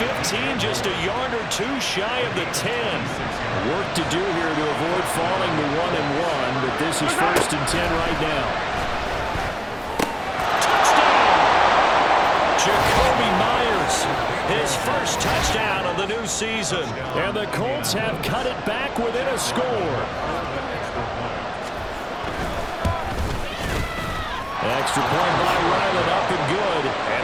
just a yard or two shy of the 10. Work to do here to avoid falling to 1-1, but this is 1st and 10 right now. Jacoby Myers, his first touchdown of the new season. And the Colts have cut it back within a score. Extra point by Ryland, up and good.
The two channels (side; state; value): both; identical; correlation 1.00